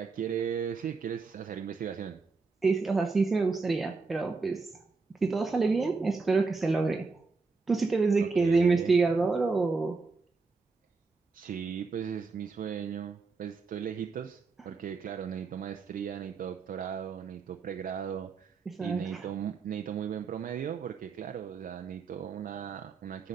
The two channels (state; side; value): quieter; left; 4.3 dB